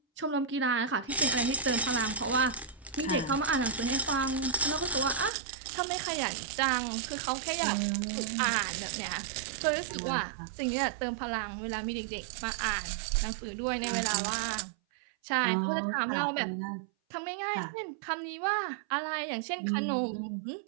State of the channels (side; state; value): left; drops out; at 5.3 s